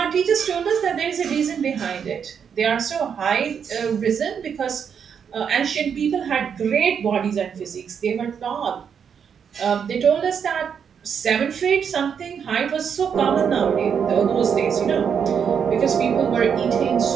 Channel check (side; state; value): left; quieter; 7.3 dB